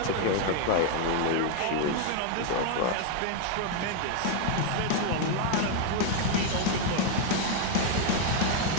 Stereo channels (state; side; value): different; both; correlation 0.00